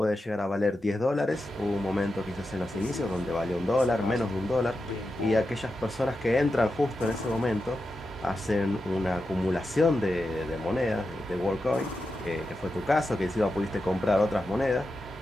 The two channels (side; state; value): both; normal; correlation 0.89